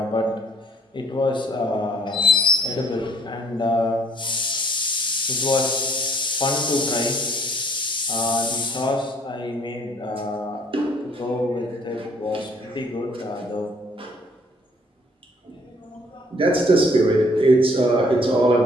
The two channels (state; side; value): normal; both; correlation 0.60